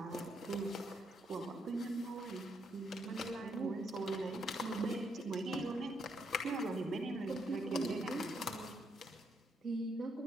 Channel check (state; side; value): normal; both; correlation 0.76